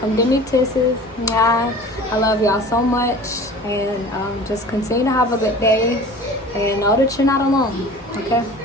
give me kisses. Yeah. I love y'all so much. And just continue to have a good day. And know that you're not alone. Okay?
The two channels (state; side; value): normal; both; correlation 0.41